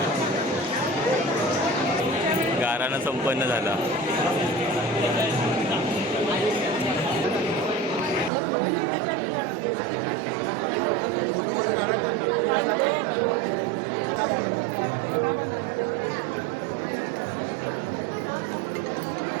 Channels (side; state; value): left; drops out; at 8.3 s